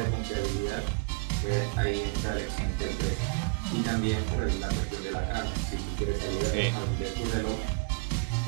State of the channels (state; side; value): quieter; left; 33.4 dB